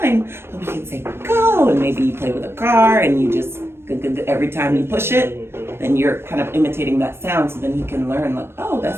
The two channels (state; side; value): late; left; 0.12 ms